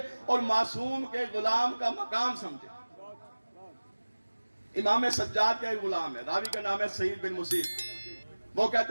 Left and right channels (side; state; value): both; inverted; correlation -1.00